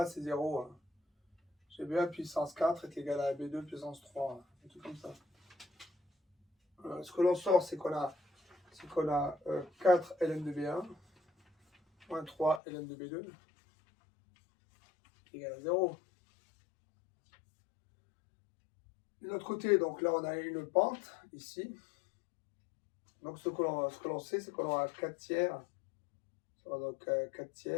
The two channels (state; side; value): drops out; right; at 12.6 s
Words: c'est 0. Hein. J'ai B1 puissance 4 est égal à B2 puissance 3. Hein. Un truc comme ça. Ce que l'on sort, c'est qu'on a 4 Ln de B1 moins 3 Ln de B2 égal à 0. De l'autre côté, donc là on a une pente ici. Donc ce que l'on sait, c'est qu'on aura 4 tiers. Donc 4